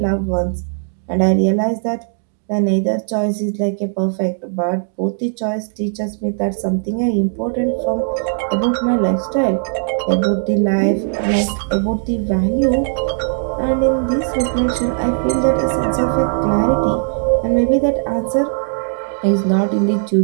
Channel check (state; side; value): silent; left; digital silence